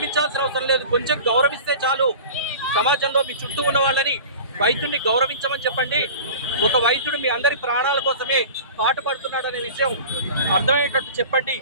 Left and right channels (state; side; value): inverted; both; correlation -0.38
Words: అవసరం లేదు, కొంచెం గౌరవిస్తే చాలు. సమాజంలో మీ చుట్టూ ఉన్న వాళ్ళని వైద్యుడిని గౌరవించమని చెప్పండి. ఒక వైద్యుడు మీ అందరి ప్రాణాల కోసమే పాటుపడుతున్నాడనే విషయం అర్థమయ్యేటట్టు చెప్పండి.